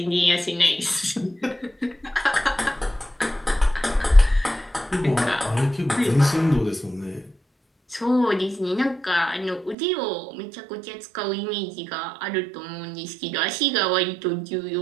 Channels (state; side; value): drops out; left; at 9.8 s